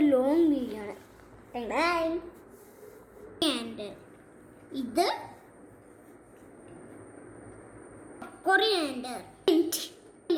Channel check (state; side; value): identical; both; correlation 1.00